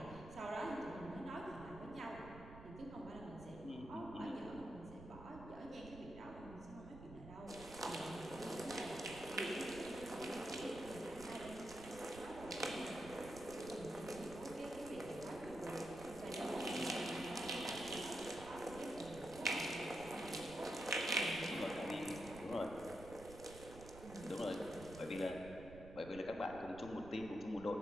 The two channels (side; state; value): right; noise; rumble, 13 dB below the sound